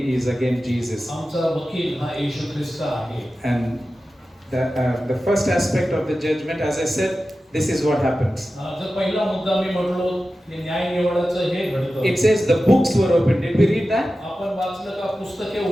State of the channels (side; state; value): both; normal; correlation 0.94